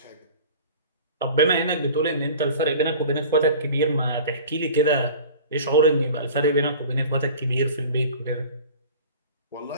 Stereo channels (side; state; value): both; inverted; correlation -0.41